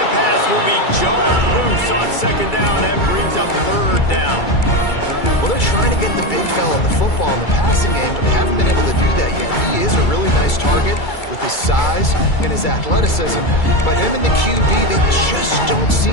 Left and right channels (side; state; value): right; late; 2.3 ms